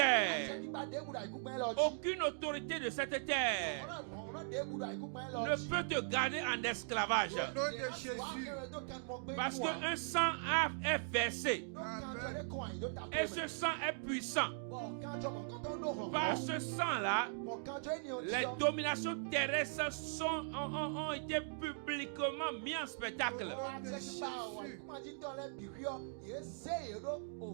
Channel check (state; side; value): silent; left; digital silence